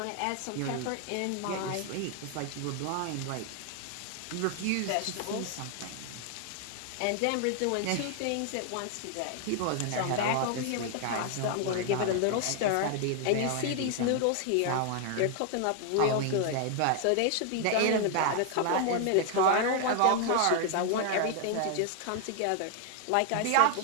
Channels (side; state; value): both; different; correlation 0.00